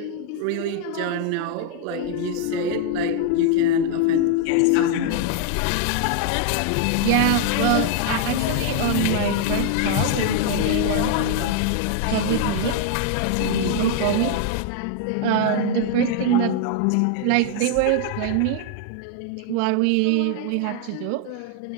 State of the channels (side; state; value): both; different; correlation 0.00